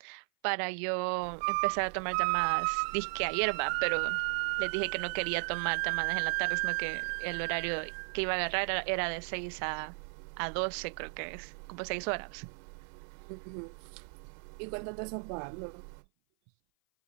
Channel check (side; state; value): left; silent; 55 dB below the other